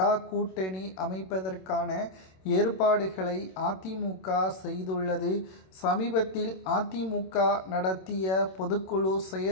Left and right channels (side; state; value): right; late; 27 ms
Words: கூட்டணி அமைப்பதற்கான ஏற்பாடுகளை அதிமுக செய்துள்ளது. சமீபத்தில் அதிமுக நடத்திய பொதுக்குழு